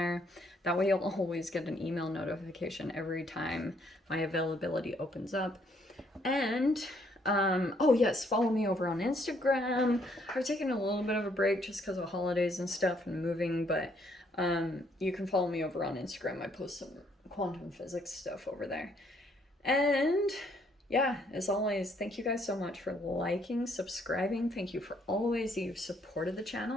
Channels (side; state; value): both; normal; correlation 0.68